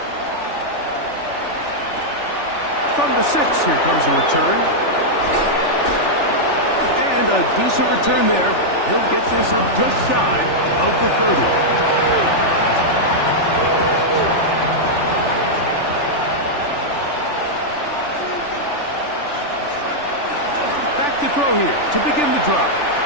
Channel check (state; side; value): late; right; 3.4 ms